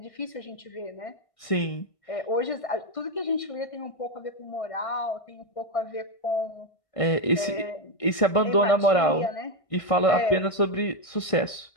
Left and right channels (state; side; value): late; right; 1.6 ms